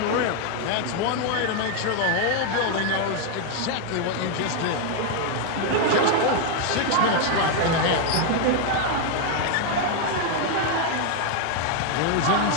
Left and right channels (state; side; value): different; both; correlation 0.01